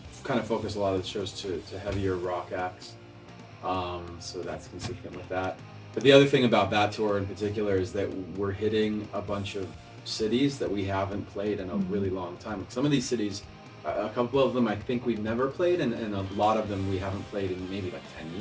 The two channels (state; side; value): identical; both; correlation 1.00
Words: kind of focus a lot of the shows to heavier rock acts. So that's consistent with that. But the other thing about that tour in particular is that we're hitting a bunch of cities that we haven't played in a really long time. Some of these cities, a couple of them I think we've never played, and a lot of them we haven't played in maybe like 10